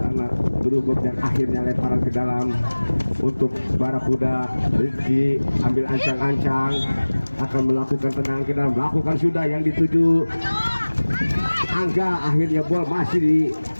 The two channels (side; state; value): both; inverted; correlation -1.00